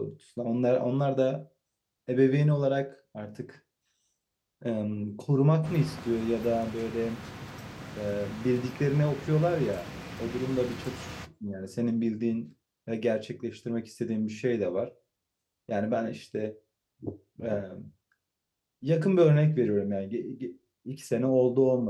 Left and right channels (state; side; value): identical; both; correlation 1.00